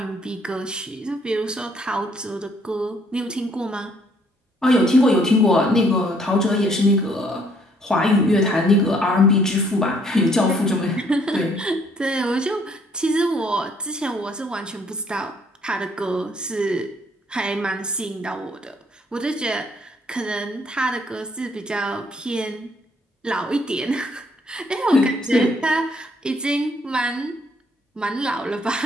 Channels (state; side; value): normal; both; correlation 0.65